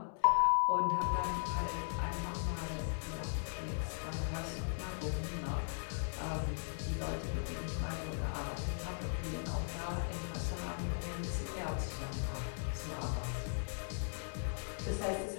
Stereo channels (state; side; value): silent; right; digital silence